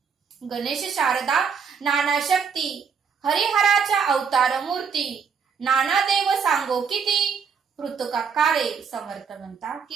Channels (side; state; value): left; quieter; 6.3 dB